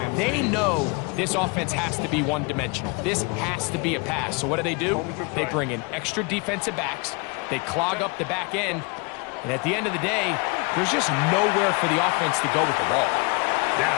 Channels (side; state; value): right; quieter; 30.5 dB